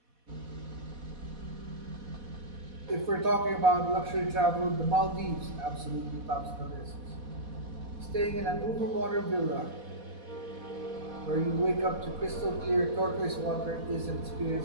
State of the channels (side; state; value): left; late; 4.1 ms